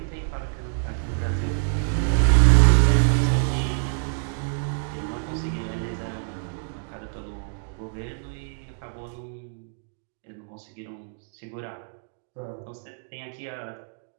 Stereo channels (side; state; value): left; silent; digital silence